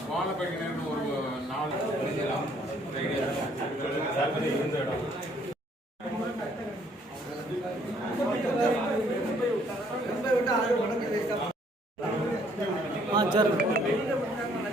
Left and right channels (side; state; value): both; normal; correlation 0.64